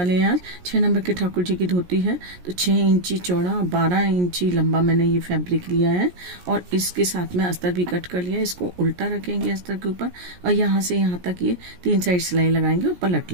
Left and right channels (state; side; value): late; left; 17 ms